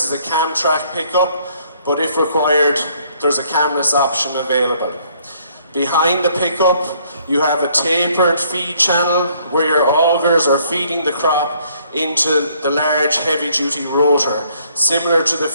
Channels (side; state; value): both; inverted; correlation -0.64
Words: is a cam track pickup, but if required, there's a camless option available. Behind the pickup, you have a tapered feed channel where your augers are feeding the crop into the large heavy-duty rotor. Similar to the